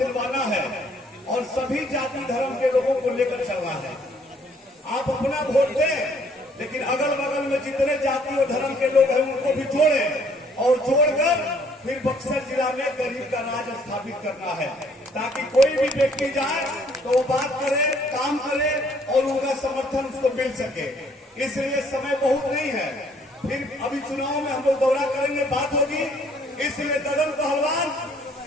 है और सभी जाति धर्म के लोगों को लेकर चलना है। आप अपना वोट दें, लेकिन अगल बगल में जितने जाति और धर्म के लोग हैं उनको भी जोड़ें और जोड़कर फिर बक्सर जिला में गरीब का राज स्थापित करना है, ताकि कोई भी व्यक्ति जाए तो वो बात करे, काम करे और उनका समर्थन उसको मिल सके। इसलिए समय बहुत नहीं है, फिर अभी चुनाव में हम लोग दौरा करेंगे, बात होगी। इसलिए ददन पहलवान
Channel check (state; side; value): normal; both; correlation 0.63